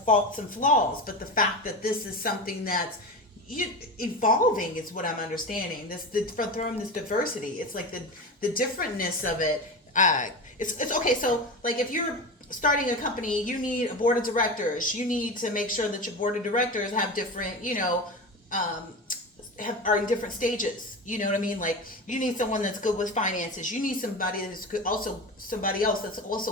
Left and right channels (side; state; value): both; normal; correlation 0.25